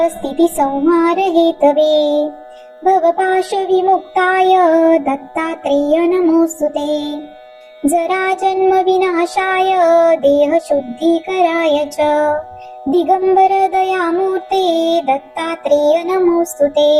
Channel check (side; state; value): both; identical; correlation 1.00